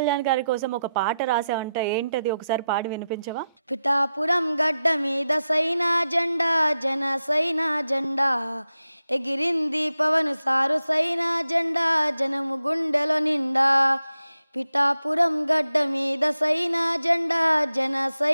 గారి కోసం ఒక పాట రాసావంట, ఏంటది? ఒకసారి పాడి వినిపించవా? పిఠాపురం గడ్డ మీద సైనా జెండా, జన సైనా జెండా ఎగిరింది పవన్ సారు సైనా జెండా, జనము గుండెలో నిండా. పిఠాపురం గడ్డ మీద సైనా జెండా, జన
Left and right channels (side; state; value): both; inverted; correlation -0.90